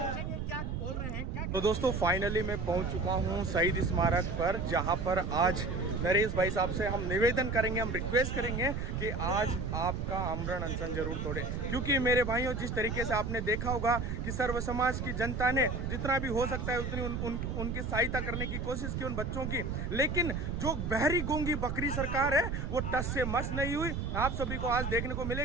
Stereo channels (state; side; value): noise; right; rumble, 3 dB below the sound